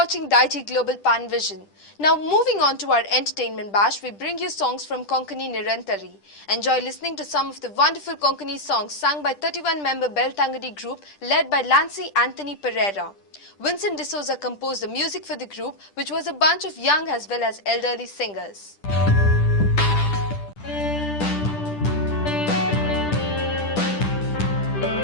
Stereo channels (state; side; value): late; right; 10 ms